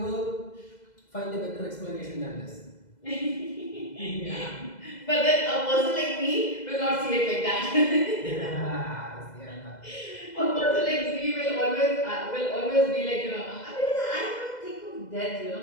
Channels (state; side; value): late; right; 2.0 ms